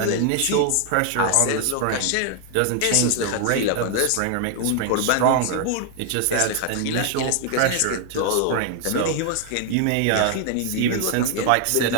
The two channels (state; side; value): different; both; correlation 0.00